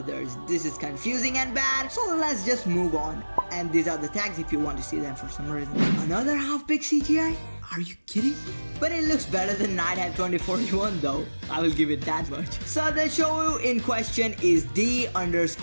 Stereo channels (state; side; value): inverted; both; correlation -1.00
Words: This is confusing and bad, so let's just move on. And these are the tags if you want to see them for some reason. Another half-big CGI? Are you kidding me? But it looks better than Nighthead 2041 though. I will give it that much. So the show in question is